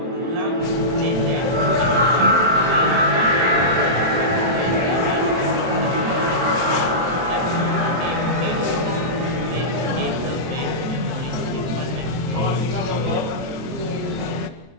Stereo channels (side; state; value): left; late; 23 ms